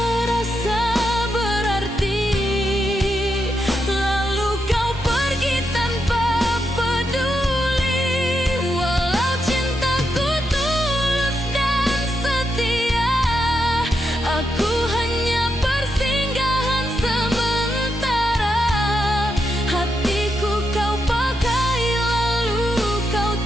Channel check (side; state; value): both; normal; correlation 0.83